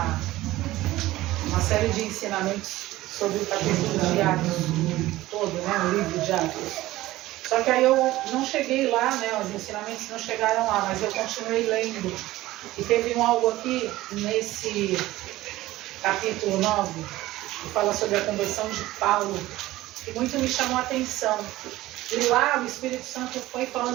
uma série de ensinamentos sobre o capítulo de Atos todo, né? O livro de Atos. Só que aí eu não cheguei lá, né? Os ensinamentos não chegaram lá, mas eu continuei lendo. E teve algo aqui nesse capítulo 9 que fala sobre a conversão de Paulo, que muito me chamou a atenção. E lá o Espírito Santo foi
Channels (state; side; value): quieter; left; 16.8 dB